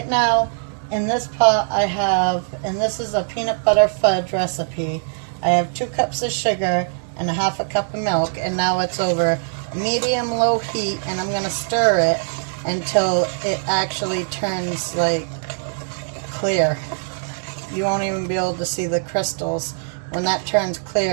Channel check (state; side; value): silent; left; digital silence